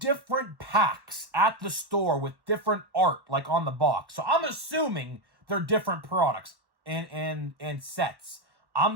packs at the store with different art, like on the box. So I'm assuming they're different products and sets.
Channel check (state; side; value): late; left; 1.1 ms